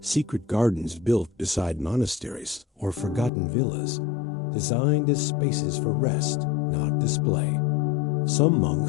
gardens built beside monasteries or forgotten villas, designed as spaces for rest, not display. Some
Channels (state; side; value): drops out; right; at 3.3 s